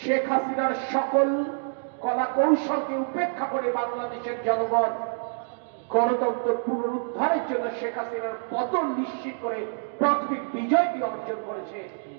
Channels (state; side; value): silent; left; digital silence